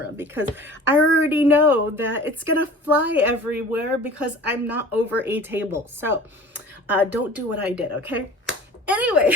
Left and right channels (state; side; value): normal; both; correlation 0.42